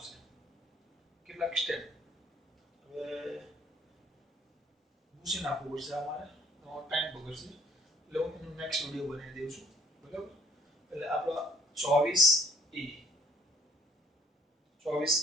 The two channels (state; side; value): normal; both; correlation 0.58